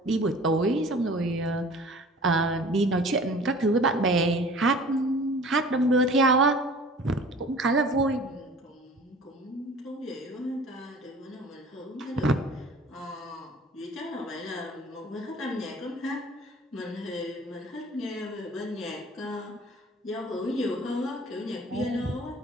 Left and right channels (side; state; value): both; normal; correlation 0.45